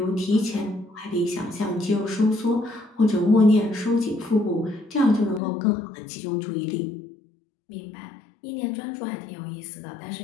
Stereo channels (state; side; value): drops out; right; at 5.4 s